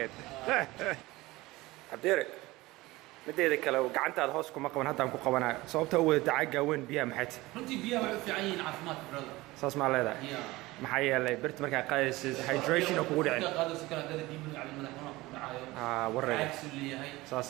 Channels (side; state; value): left; quieter; 20.0 dB